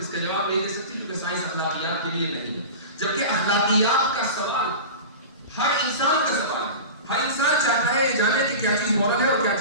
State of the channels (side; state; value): both; inverted; correlation -0.31